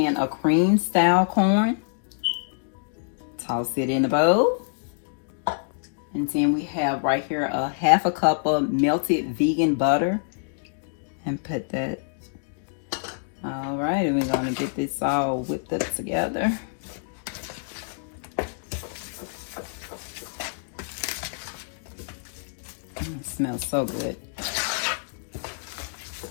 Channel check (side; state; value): right; silent; digital silence